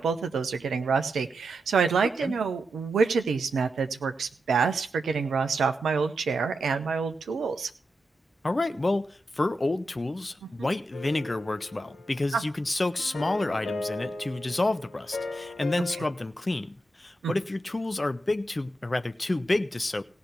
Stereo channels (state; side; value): normal; both; correlation 0.88